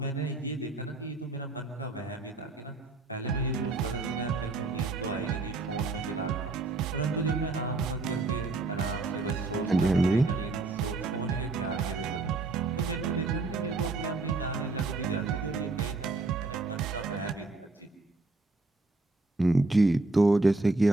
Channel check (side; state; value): left; quieter; 3.4 dB